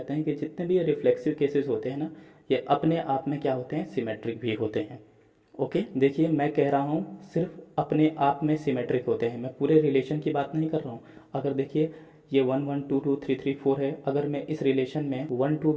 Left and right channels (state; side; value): identical; both; correlation 1.00